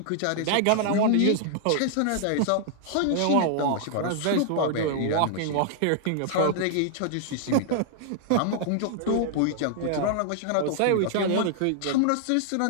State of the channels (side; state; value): both; different; correlation -0.01